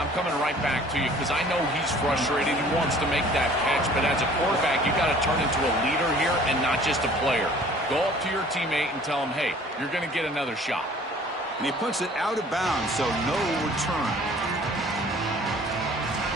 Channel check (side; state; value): both; normal; correlation 0.51